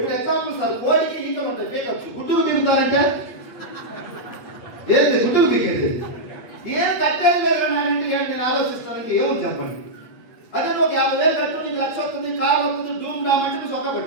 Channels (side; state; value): right; late; 8.3 ms